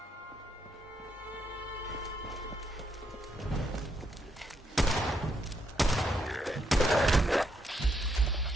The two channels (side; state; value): both; normal; correlation 0.77